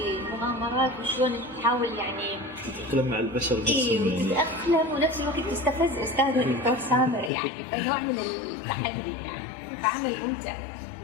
مغامرات وشلون تحاول يعني تتأقلم مع البشر نفسهم، يعني تتأقلم ونفس الوقت تستفز استاذ الدكتور سامر، يعني فنوع من التحدي، يعني فعمل ممتع.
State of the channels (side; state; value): right; drops out; at 7.3 s